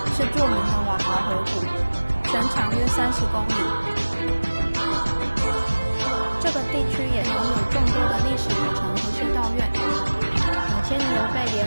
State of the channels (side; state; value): both; inverted; correlation -1.00